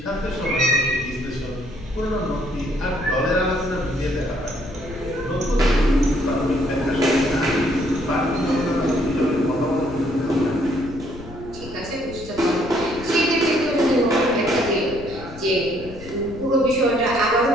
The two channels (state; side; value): noise; left; rumble, 16 dB below the sound